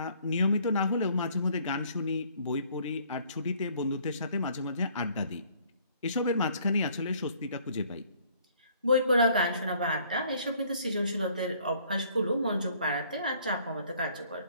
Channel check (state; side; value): inverted; both; correlation -0.61